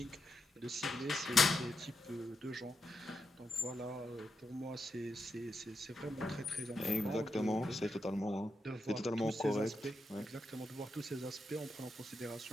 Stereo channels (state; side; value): normal; both; correlation 0.84